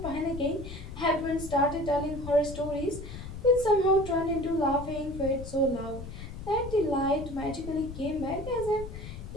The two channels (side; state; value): left; noise; rumble, 10 dB below the sound